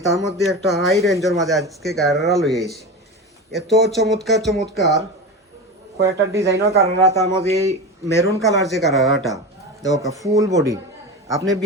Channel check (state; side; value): normal; both; correlation 0.25